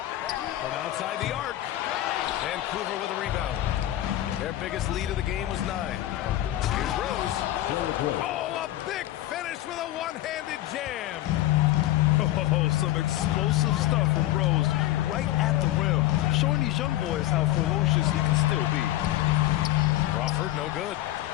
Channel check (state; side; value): quieter; right; 14.8 dB